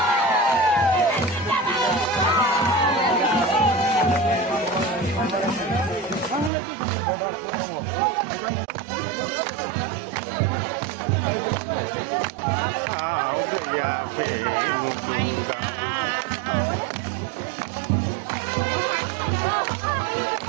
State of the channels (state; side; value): drops out; left; at 6.5 s